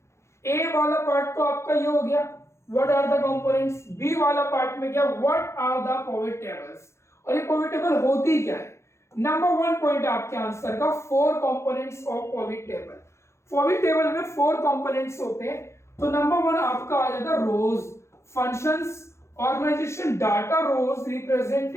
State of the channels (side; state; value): right; late; 0.13 ms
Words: ए वाला पार्ट तो आपका ये हो गया, what are the components. B वाला पार्ट में क्या, what are the pivot tables. और ये पिवोट टेबल होती क्या है। नंबर 1 पॉइंट आपके आंसर का, four components of pivot table. Pivot table में फोर कंपोनेंट्स होते हैं। तो नंबर 1 आपका आ जाता है rows, functions, organization, data. Rows